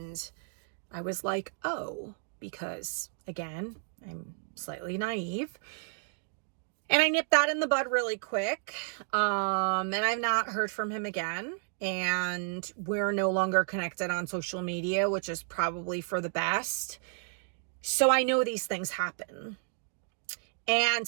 I was like, oh, because again, I'm slightly naive. And I nipped that in the bud really quick. And I've not heard from him again. And we're no longer connected on social media, which is probably for the best. So I know these things happen. And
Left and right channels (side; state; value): left; silent; 57 dB below the other